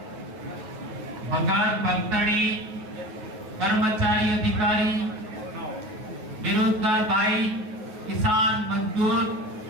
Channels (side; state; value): left; late; 9.4 ms